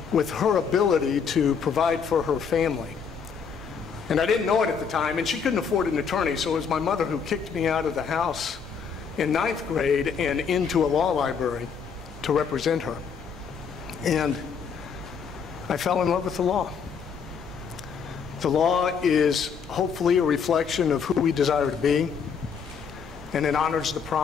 with her ability to provide for her family. And I didn't know it at the time, and she couldn't afford an attorney, so it was my mother who kicked me out of the house in 9th grade and into a law library to represent her. And I fell in love with the law. The law is hopefully a reflection of who we desire to be, and it honors the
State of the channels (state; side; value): quieter; right; 6.4 dB